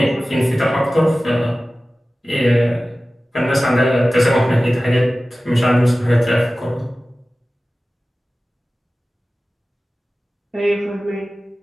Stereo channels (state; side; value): normal; both; correlation 0.96